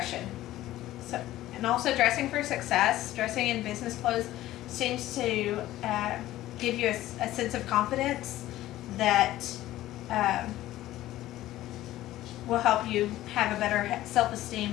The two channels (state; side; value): quieter; right; 15.0 dB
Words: And also dressing for success, dressing in business clothes seems to give you a sense of confidence that will help you have a better